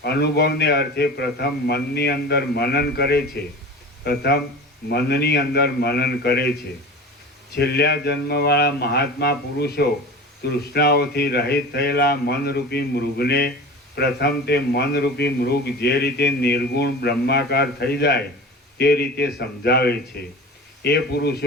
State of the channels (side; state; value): both; normal; correlation 0.35